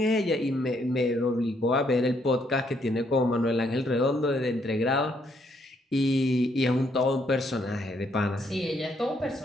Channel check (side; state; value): both; normal; correlation 0.72